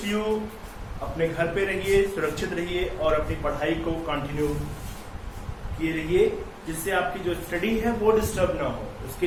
you अपने घर पे रहिए, सुरक्षित रहिए और अपनी पढ़ाई को कंटिन्यू किए रहिए, जिससे आपकी जो स्टडी है वो डिस्टर्ब ना हो। उसके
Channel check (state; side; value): identical; both; correlation 1.00